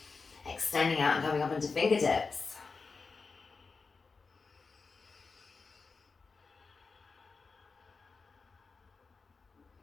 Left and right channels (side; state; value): right; quieter; 4.5 dB